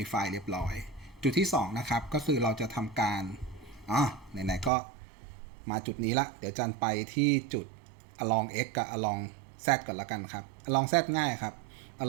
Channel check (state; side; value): drops out; left; at 4.7 s